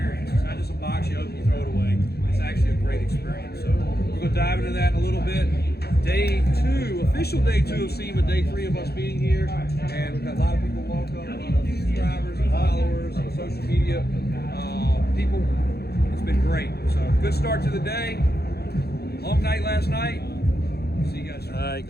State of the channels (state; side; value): late; right; 0.46 ms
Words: It's not just a box you open, you throw it away. It's actually a great experience. So we're going to dive into that in a little bit. Day 2, official day 2 of Sema, day 3 of us being here, and we've got a lot of people welcome, a lot of subscribers and followers on social media. People, it's been great. So good start to the day. Long night last night. See you guys. All right,